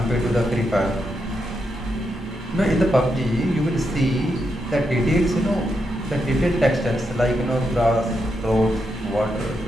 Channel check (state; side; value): normal; both; correlation 0.83